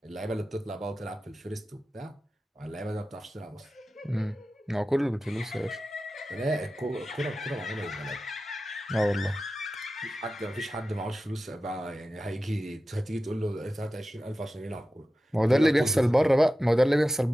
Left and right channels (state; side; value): normal; both; correlation 0.94